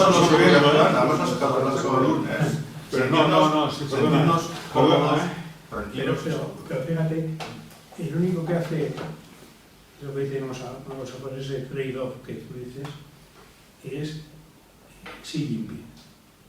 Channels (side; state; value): both; identical; correlation 1.00